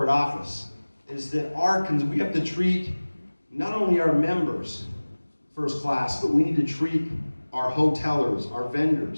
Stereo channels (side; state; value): both; inverted; correlation -1.00